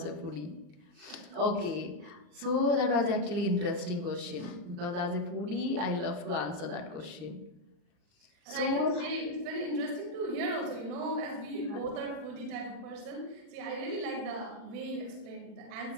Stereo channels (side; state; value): left; late; 39 ms